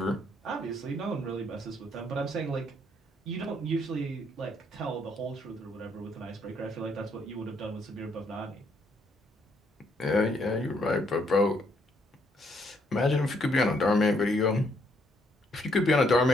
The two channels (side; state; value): both; normal; correlation 0.71